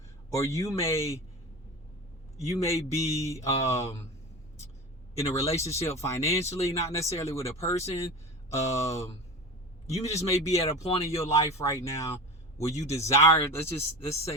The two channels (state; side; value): normal; both; correlation 0.29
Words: or you may be in a relationship financially, not necessarily with a person. You just may be at a point in your life right now where you desire, let's